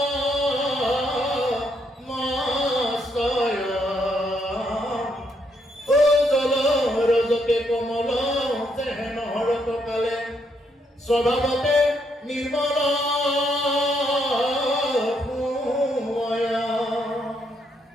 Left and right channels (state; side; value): normal; both; correlation 0.75